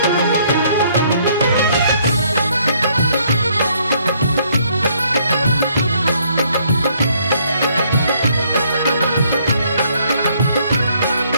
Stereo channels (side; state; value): both; inverted; correlation -0.66